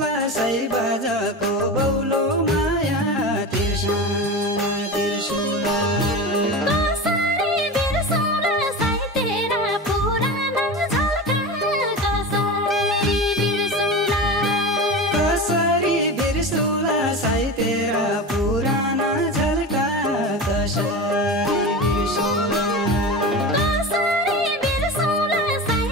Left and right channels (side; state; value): both; normal; correlation 0.27